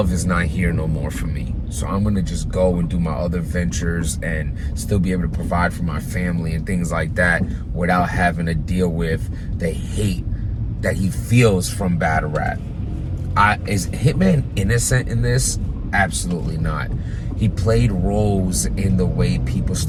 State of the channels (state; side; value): identical; both; correlation 1.00